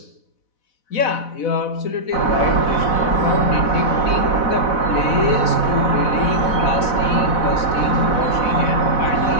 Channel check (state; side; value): late; right; 4.0 ms